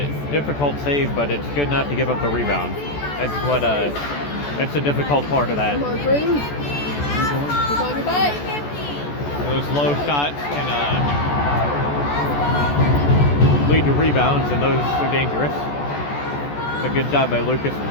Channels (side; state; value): right; late; 14 ms